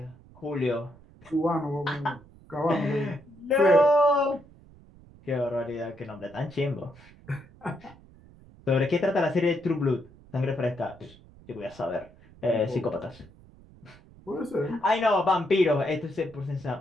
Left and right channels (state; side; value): noise; right; rumble, 24 dB below the sound